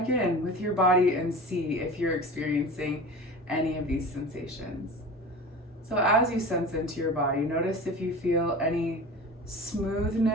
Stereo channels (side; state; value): both; normal; correlation 0.35